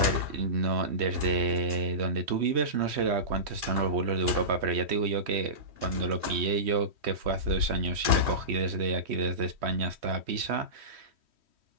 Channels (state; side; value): late; left; 3.1 ms